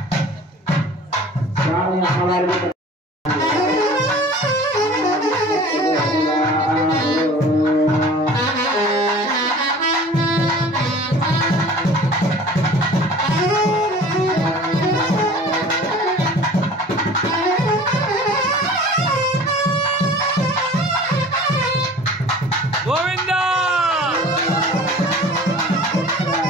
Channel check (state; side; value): normal; both; correlation 0.44